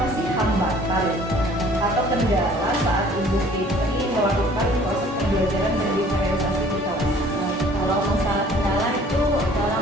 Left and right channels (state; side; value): normal; both; correlation 0.53